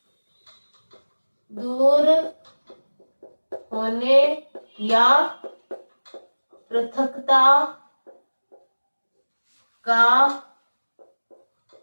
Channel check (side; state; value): both; inverted; correlation -1.00